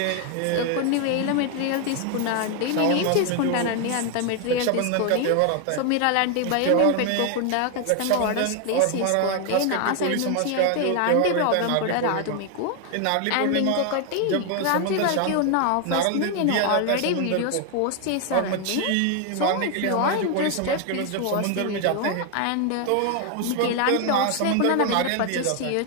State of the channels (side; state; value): both; different; correlation 0.01